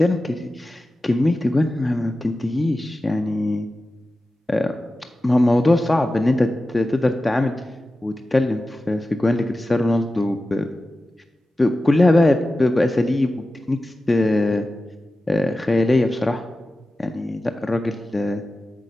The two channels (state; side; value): normal; both; correlation 0.94